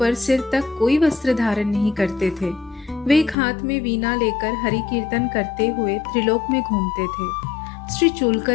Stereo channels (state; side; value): drops out; right; at 3.4 s